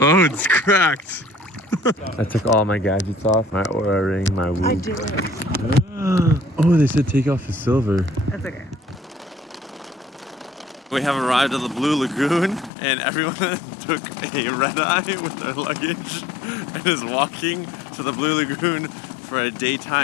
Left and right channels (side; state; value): right; drops out; at 12.7 s